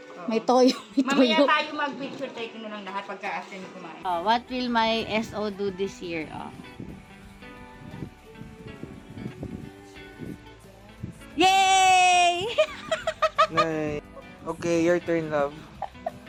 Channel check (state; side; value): identical; both; correlation 1.00